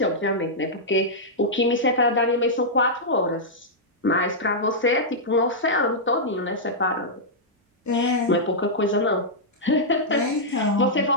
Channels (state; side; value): normal; both; correlation -0.09